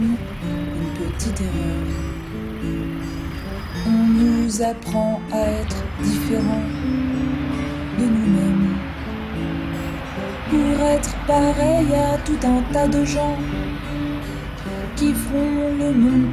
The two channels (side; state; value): both; identical; correlation 1.00